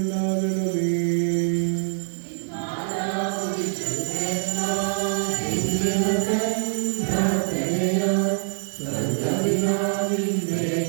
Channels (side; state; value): left; silent; digital silence